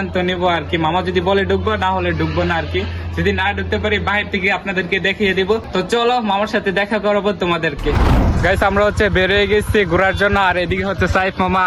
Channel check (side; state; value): both; identical; correlation 1.00